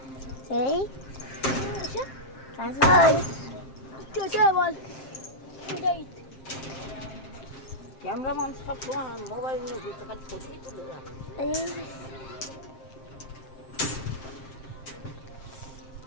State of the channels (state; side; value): late; right; 7.5 ms